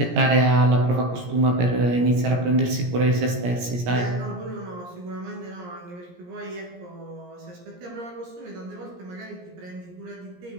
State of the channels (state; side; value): late; left; 17 ms